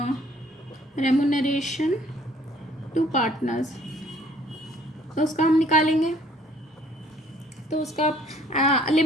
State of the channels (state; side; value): normal; both; correlation 0.59